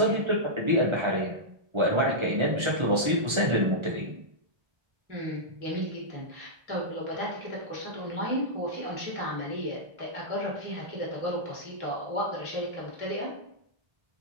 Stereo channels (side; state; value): left; late; 1.3 ms